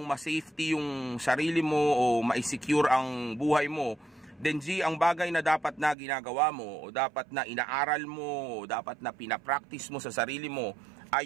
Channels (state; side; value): drops out; left; at 6.0 s